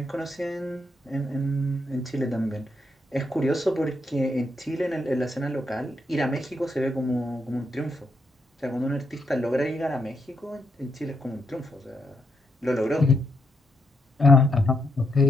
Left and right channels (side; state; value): both; normal; correlation 0.80